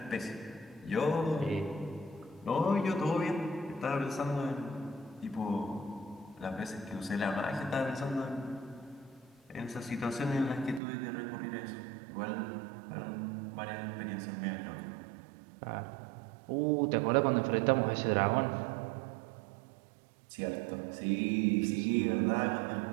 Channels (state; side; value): drops out; left; at 10.8 s